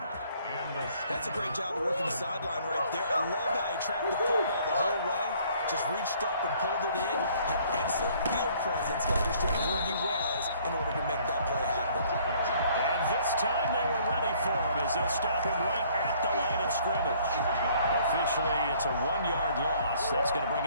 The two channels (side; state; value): both; inverted; correlation -0.60